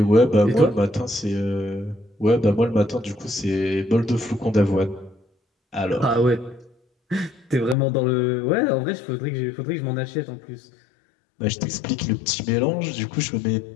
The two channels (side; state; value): right; drops out; at 7.8 s